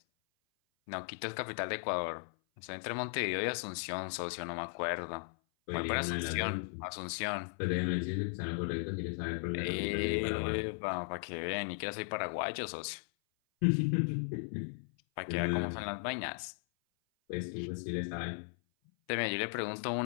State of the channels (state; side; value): silent; right; 53 dB below the other